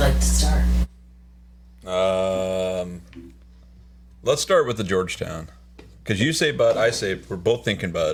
to start? Let's start with the Georgetown. Because you say Bud, I say we're both thinking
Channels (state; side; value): identical; both; correlation 1.00